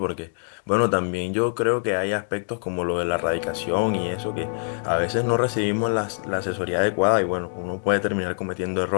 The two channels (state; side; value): silent; right; digital silence